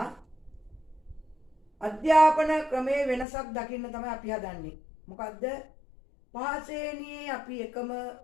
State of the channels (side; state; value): right; drops out; at 3.2 s